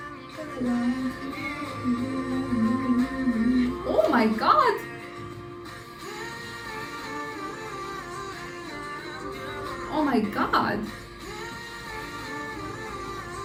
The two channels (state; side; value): identical; both; correlation 1.00